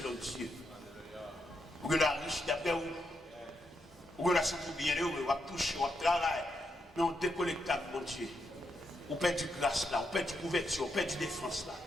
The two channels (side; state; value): both; normal; correlation 0.82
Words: Dieu. Ou il y a la richesse d'après vous. Ou il y a la santé bien, ou va toucher, ou va travailler. Mais on déconnecte avec mon Dieu. On perd du grâce là, on perd du couverture, on perd du défense là.